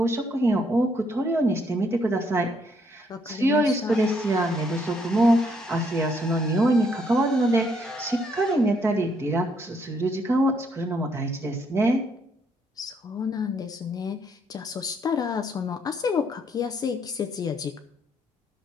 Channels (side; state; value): both; normal; correlation 0.71